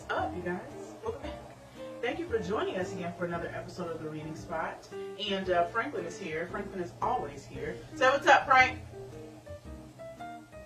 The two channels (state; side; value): identical; both; correlation 1.00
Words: up, you guys? Welcome back. Thank you for joining us again for another episode of The Reading Spot. And Franklin is here. Franklin is always here. So what's up, Frank?